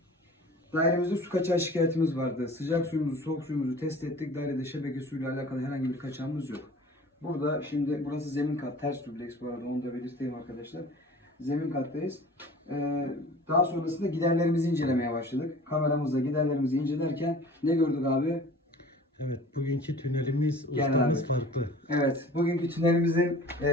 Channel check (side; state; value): both; normal; correlation 0.44